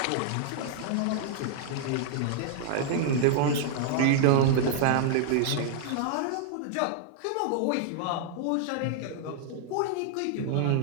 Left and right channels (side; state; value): both; different; correlation -0.01